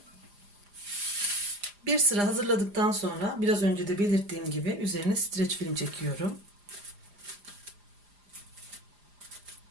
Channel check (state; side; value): late; left; 4.9 ms